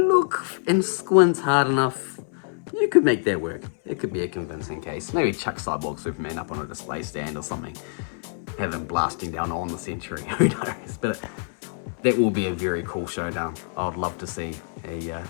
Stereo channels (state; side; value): silent; right; 61 dB below the other